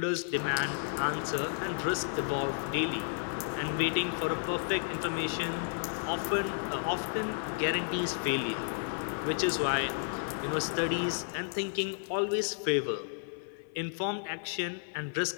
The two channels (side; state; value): right; silent; 56 dB below the other